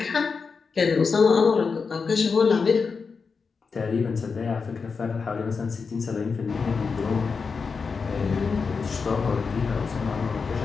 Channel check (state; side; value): quieter; right; 5.1 dB